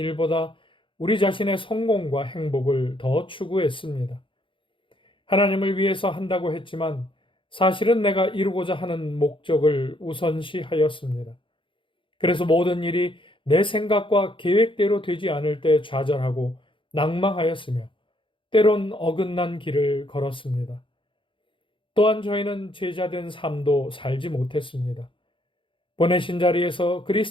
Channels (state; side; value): late; right; 0.25 ms